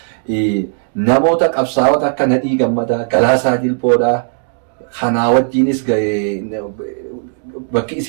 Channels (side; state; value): left; silent; digital silence